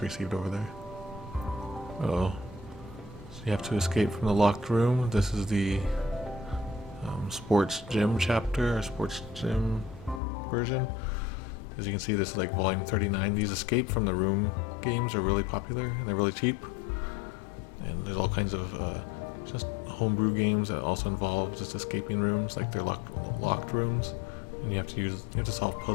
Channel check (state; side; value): drops out; right; at 10.2 s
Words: received over there. Uh-oh. So you have to escape from the locked room. This is the sports gym chapter, or sports gym version. As you can see, this is like volume 39. These escape from the room games are really popular, and they're really cheap. And there's all kinds of just homebrew games that also involve just escaping rooms, like they're locked rooms, and you have to solve